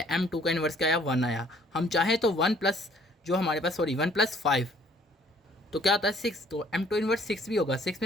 M2 का इन्वर्स क्या आया, 1 आया। हम चाहें तो 1 प्लस जो हमारे पास 1 + 5 तो क्या होता है 6, तो M2 इन्वर्स 6 भी होगा। 6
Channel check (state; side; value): normal; both; correlation 0.59